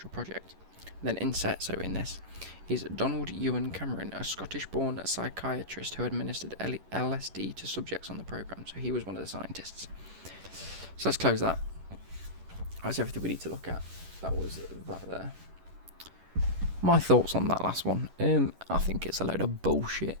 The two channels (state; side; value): late; left; 11 ms